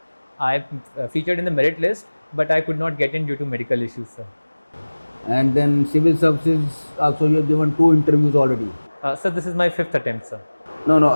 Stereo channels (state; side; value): inverted; both; correlation -1.00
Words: I featured in the merit list, but I could not get in due to medical issues, sir. And then civil services also you have given 2 interviews already. Sir, this is my 5th attempt, sir.